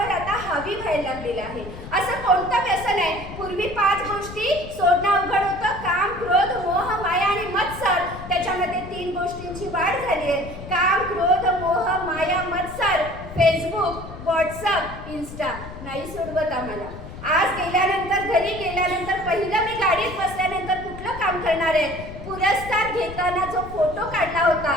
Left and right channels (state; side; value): noise; left; rumble, 12 dB below the sound